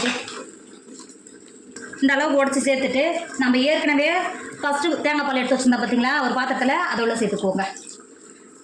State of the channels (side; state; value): both; identical; correlation 1.00